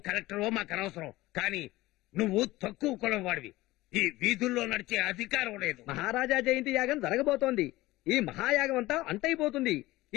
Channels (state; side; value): quieter; right; 18.4 dB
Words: కలెక్టరో మాకు అనవసరం, కానీ నువ్వు తక్కువ కులం వాడివి. ఈ వీధుల్లో నడిచే అధికారం లేదు. మహారాజా జయంతి యాగం జరగబోతోంది. ఈ మహాయాగం అంతా అంతైపోతుంది.